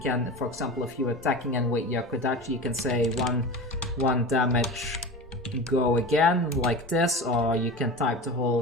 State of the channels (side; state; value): both; normal; correlation 0.29